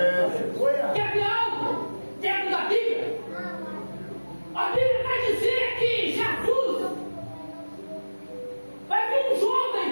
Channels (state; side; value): inverted; both; correlation -1.00